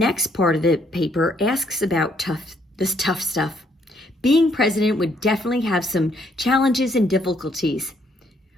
part of the paper asks about this tough stuff. Being president would definitely have some challenges and difficulties.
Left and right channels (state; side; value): normal; both; correlation 0.69